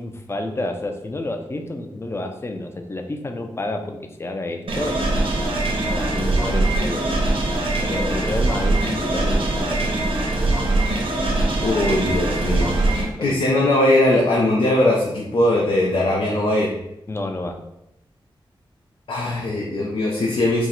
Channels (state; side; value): normal; both; correlation 0.72